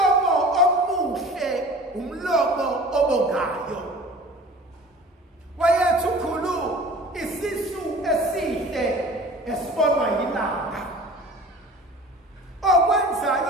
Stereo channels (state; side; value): normal; both; correlation 0.43